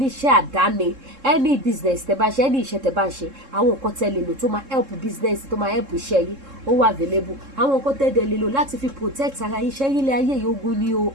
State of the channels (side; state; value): left; late; 3.7 ms